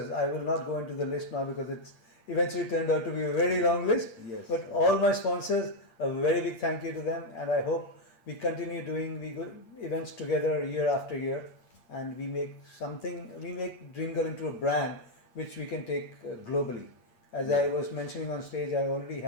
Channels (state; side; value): late; right; 8.6 ms